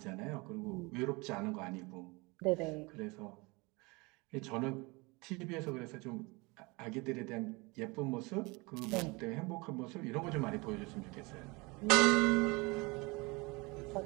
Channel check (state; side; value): quieter; left; 26.1 dB